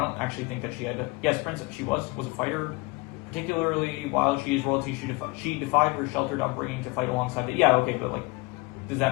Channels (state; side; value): quieter; right; 25.3 dB